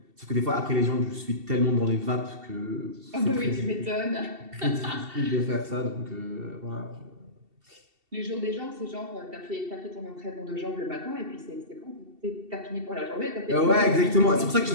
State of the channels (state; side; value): late; left; 2.7 ms